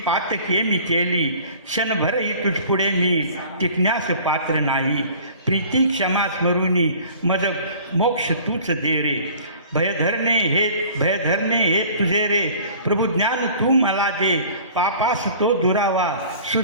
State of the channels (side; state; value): both; inverted; correlation -0.47